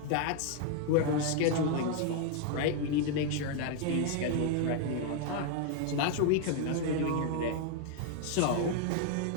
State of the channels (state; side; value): different; both; correlation 0.00